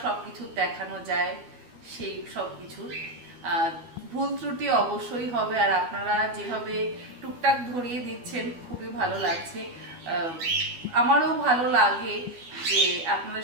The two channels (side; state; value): left; late; 12 ms